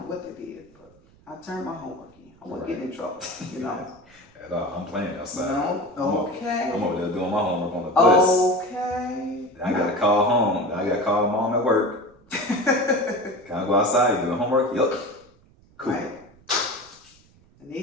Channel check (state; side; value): noise; right; rumble, 29 dB below the sound